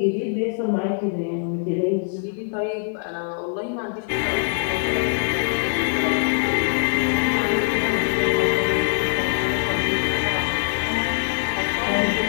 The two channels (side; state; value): right; silent; 64 dB below the other